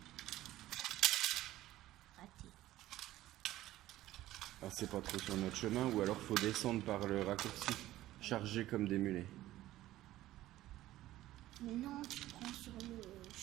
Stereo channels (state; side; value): quieter; left; 15.1 dB